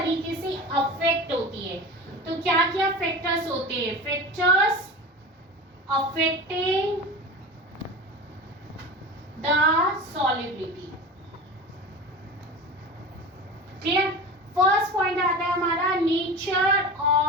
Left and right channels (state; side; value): normal; both; correlation 0.31